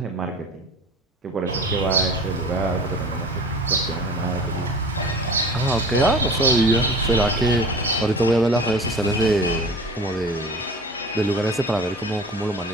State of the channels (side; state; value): both; normal; correlation 0.40